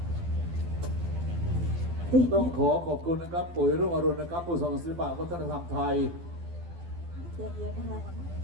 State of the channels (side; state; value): left; late; 12 ms